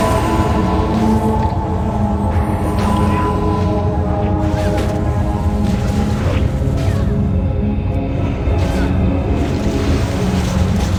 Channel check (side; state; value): both; identical; correlation 1.00